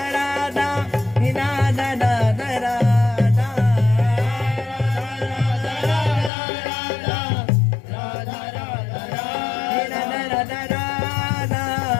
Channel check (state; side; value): drops out; right; at 6.3 s